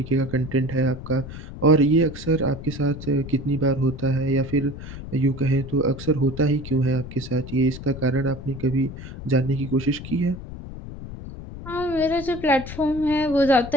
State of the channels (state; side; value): noise; left; rumble, 11 dB below the sound